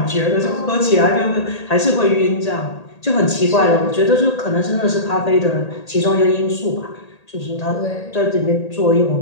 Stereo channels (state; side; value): late; right; 1.8 ms